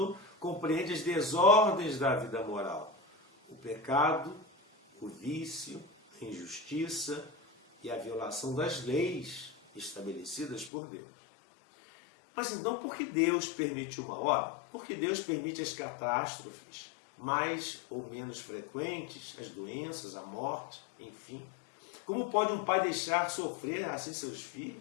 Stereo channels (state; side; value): drops out; right; at 10.7 s